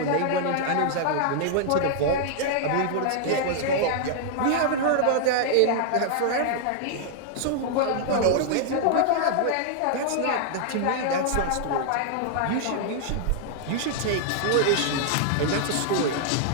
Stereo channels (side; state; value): both; different; correlation 0.00